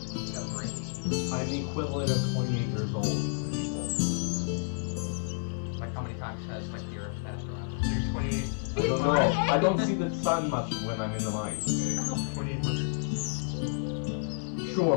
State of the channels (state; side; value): silent; right; 55 dB below the other